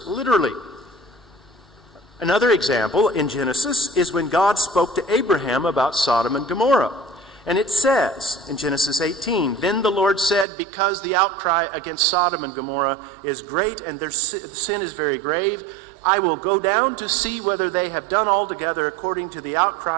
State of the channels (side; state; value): left; drops out; at 10.5 s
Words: literally. Another example in Genesis is when God spoke to Abraham about Sodom and Gomorrah. And it says in Genesis 18, Then the Lord said, because the outcry against Sodom and Gomorrah is great and their sin is very grave, I will go down to see whether they have done altogether according to the